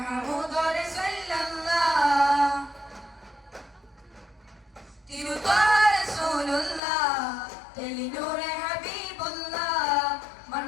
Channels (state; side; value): drops out; right; at 6.8 s